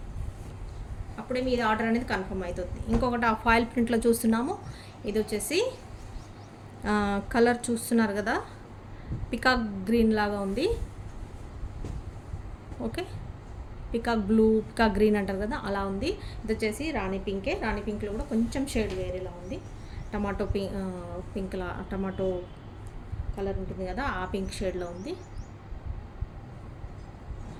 అప్పుడే మీది ఆర్డర్ అనేది కన్ఫర్మ్ అవుతుంది. ఇంకొకటి ఆ ఫాయిల్ ప్రింట్లో చూస్తున్నాము, ఇది వచ్చేసి కలర్ చూస్తున్నారు కదా, పికాక్ గ్రీన్ లాగా ఉంది. Okay, peacock blue, peacock green అంటారు కదా, అలా ఉంది. ఇది వచ్చేసి రాణి పింకే, రాణి పింక్లో కూడా కొంచెం షేడ్ వేరేలా ఉంది. టమాటో పింక్లా, టమాటో కలర్ ఉంటుంది కదా, ఆ పింక్ షేడ్లో ఉంది.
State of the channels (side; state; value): both; identical; correlation 1.00